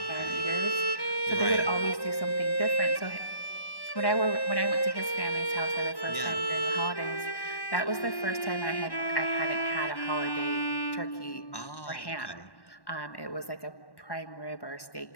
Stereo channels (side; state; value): right; late; 1.1 ms